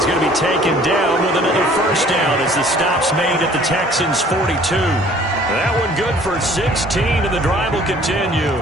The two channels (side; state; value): both; normal; correlation 0.54